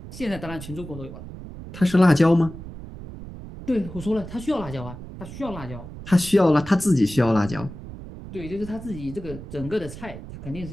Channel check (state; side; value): noise; right; rumble, 13 dB below the sound